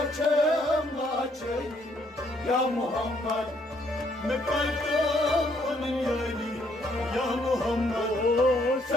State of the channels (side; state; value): both; normal; correlation 0.69